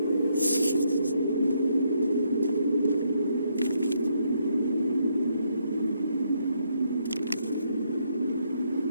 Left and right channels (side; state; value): both; inverted; correlation -0.75